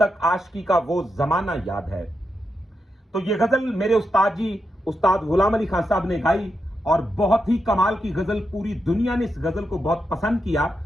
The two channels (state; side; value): normal; both; correlation 0.86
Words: तक आशिकी का वो जमाना याद है। तो ये गजल मेरे उस्ताद जी उस्ताद गुलाम अली खान साहब ने गाई और बहुत ही कमाल की गजल। पूरी दुनिया ने इस गजल को बहुत पसंद किया